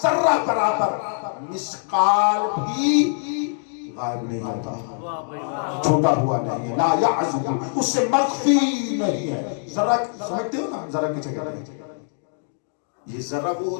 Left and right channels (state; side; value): silent; right; digital silence